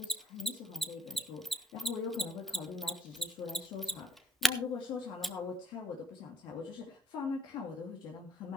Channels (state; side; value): normal; both; correlation 0.66